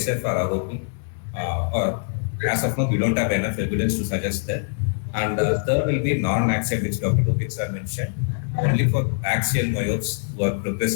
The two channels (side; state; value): right; silent; 60 dB below the other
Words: for ROP, or as of now we don't have enough evidence to suggest that. And third will be non-axial, which Dr. Lopez mentioned. Only for axial myopes who are